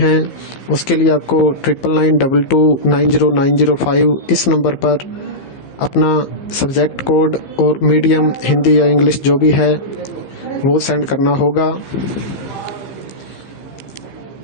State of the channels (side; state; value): right; late; 15 ms